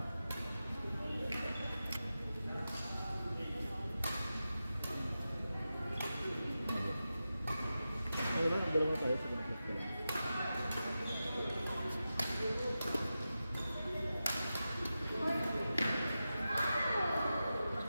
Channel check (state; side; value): inverted; both; correlation -0.92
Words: Ay, lang, ang dalawa tayo sa ganapit ko lang.